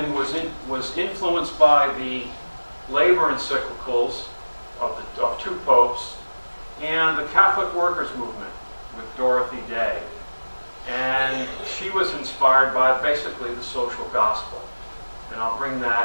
was influenced by the labor encyclicals of two popes and the Catholic workers movement with Dorothy Day. And she was inspired by basically the social gospel. And I'll bring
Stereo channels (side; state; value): both; inverted; correlation -1.00